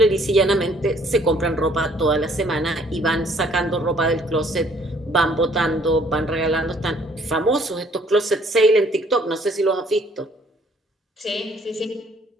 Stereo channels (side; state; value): both; normal; correlation 0.61